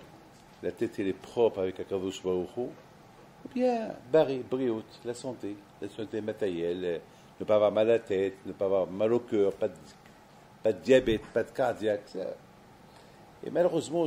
La tête, elle est propre avec Akadosh Baruch Hu. Ou bien, Briot, la santé matérielle, ne pas avoir mal à la tête, ne pas avoir mal au cœur, pas de diabète, pas de cardiaque. Ça. Et malheureusement,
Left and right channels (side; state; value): both; identical; correlation 1.00